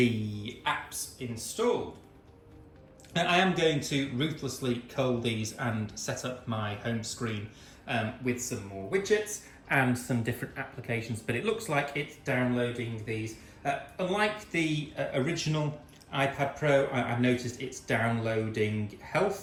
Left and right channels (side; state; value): both; identical; correlation 1.00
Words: apps installed. Now, I am going to ruthlessly cull these and set up my home screen with some more widgets and some different applications, but it looks like it's downloading these. Unlike the original iPad Pro, I've noticed it's downloading